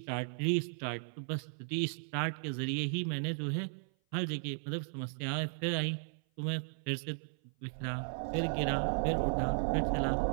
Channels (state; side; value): silent; left; 54 dB below the other